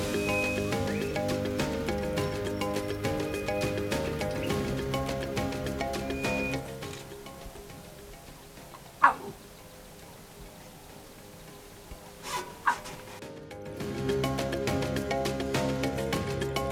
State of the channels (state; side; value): identical; both; correlation 1.00